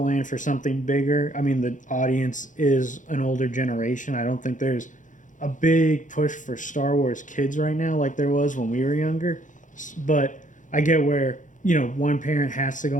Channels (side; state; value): right; late; 0.37 ms